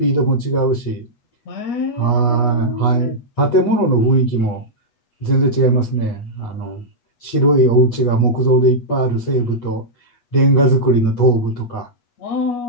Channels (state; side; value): late; right; 8.3 ms